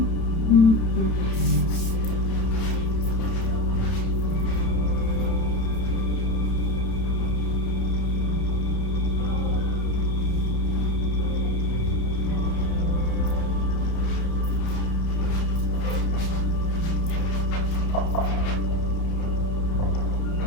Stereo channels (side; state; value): right; late; 31 ms